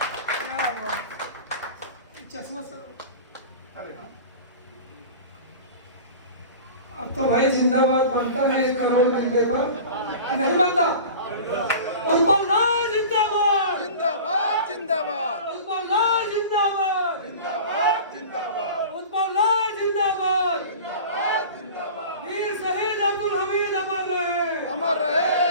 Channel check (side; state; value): both; inverted; correlation -0.37